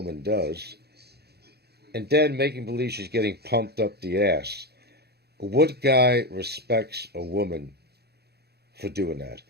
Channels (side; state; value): left; late; 0.47 ms